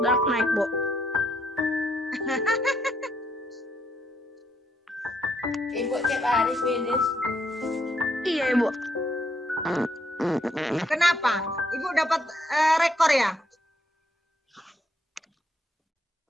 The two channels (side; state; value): both; normal; correlation 0.74